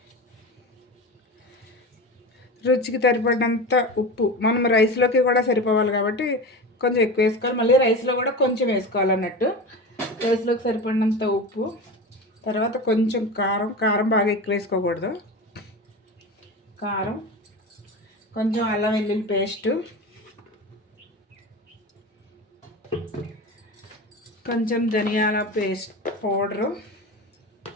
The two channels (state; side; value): normal; both; correlation 0.27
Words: రుచికి సరిపడినంత ఉప్పు. మనం రైస్లోకి కూడా సరిపోవాలి కాబట్టి కొంచెం ఎక్కువ వేసుకోవాలి. మళ్ళీ రైస్లో కూడా కొంచెం వేసుకోవాలన్నట్టు. రైస్లోకి సరిపడినంత ఉప్పు, తర్వాత కొంచెం కారం బాగా ఎక్కువ వేసుకోకూడదు. కారం, కొంచెం అల్లం వెల్లుల్లి పేస్టు, కొంచెం ధనియాల పేస్ట్ పౌడరు,